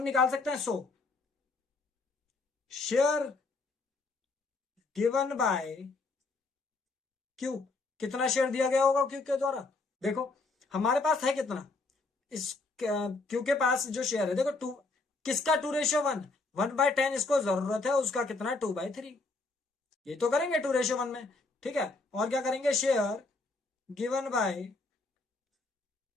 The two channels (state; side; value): quieter; right; 3.6 dB